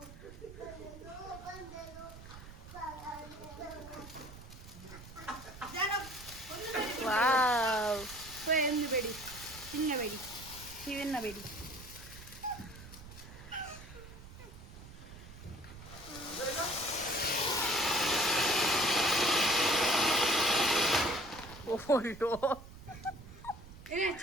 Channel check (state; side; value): noise; right; rumble, 16 dB below the sound